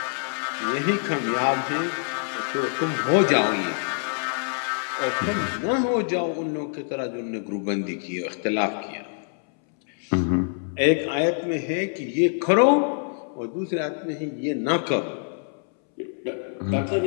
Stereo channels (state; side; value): silent; right; 62 dB below the other